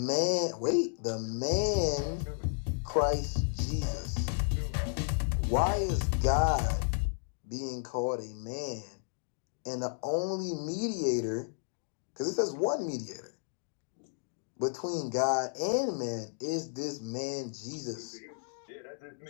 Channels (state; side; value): silent; right; digital silence